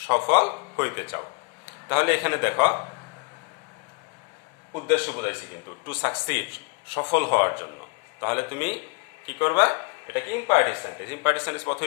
সফল হইতে চাও। তাহলে এখানে দেখো উদ্দেশ্য বোঝাইছি কিন্তু, টু সাকসিড, সফল হওয়ার জন্য। তাহলে তুমি কি করবা? এটাকে ইম্পারেটিভ সেন্টেন্স। ইম্পারেটিভ সেন্টেন্স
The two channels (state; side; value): quieter; right; 33.1 dB